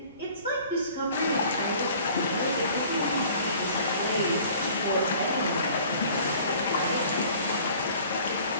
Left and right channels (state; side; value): inverted; both; correlation -0.50